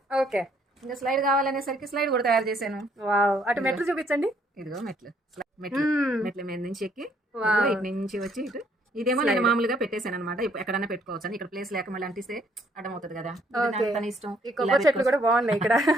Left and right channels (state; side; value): normal; both; correlation 0.66